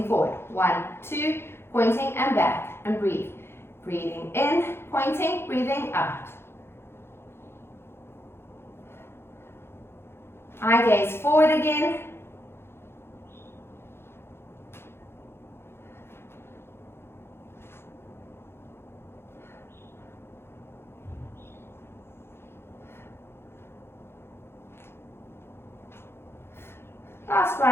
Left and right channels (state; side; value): late; right; 0.12 ms